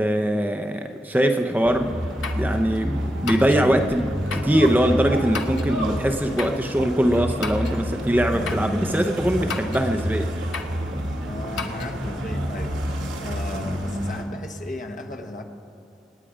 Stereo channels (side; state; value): both; normal; correlation 0.87